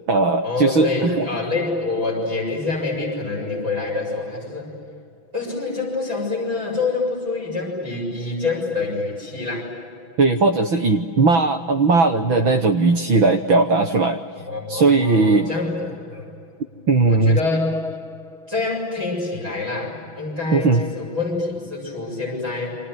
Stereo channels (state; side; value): late; left; 6.1 ms